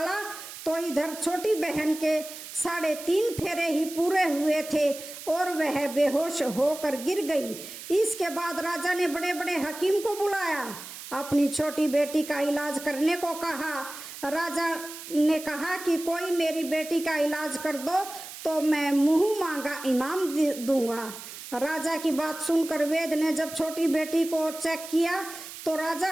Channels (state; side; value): noise; right; hiss, 12 dB below the sound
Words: तो इधर छोटी बहन के 3.5 फेरे ही पूरे हुए थे और वह बेहोश होकर गिर गई। इसके बाद राजा ने बड़े बड़े हकीम को बुलाया, अपनी छोटी बेटी का इलाज करने को कहा। राजा ने कहा कि कोई मेरी बेटी का इलाज कर दो तो मैं मुंह मांगा इनाम दूंगा। राजा की बात सुनकर वैद्य ने जब छोटी बेटी को चेक किया तो राजा